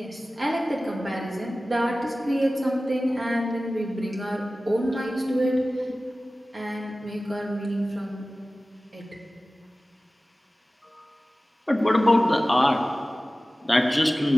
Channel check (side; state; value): both; normal; correlation 0.96